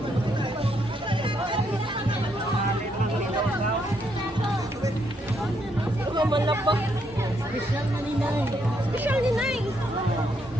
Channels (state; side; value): normal; both; correlation 0.75